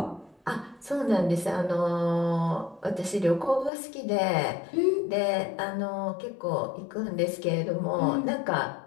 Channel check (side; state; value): right; drops out; at 3.7 s